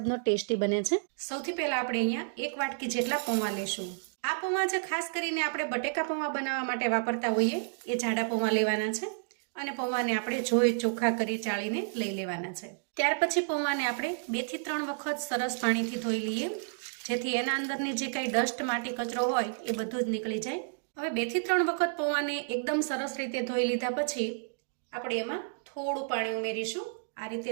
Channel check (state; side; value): silent; left; digital silence